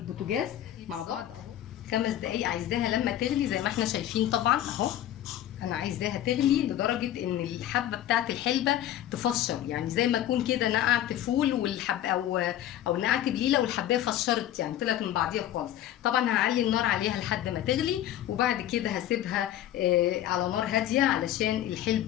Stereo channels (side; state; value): right; quieter; 12.3 dB